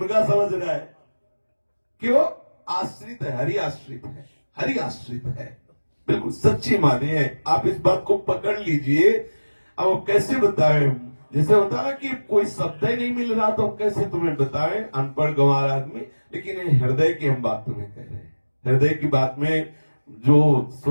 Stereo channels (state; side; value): inverted; both; correlation -1.00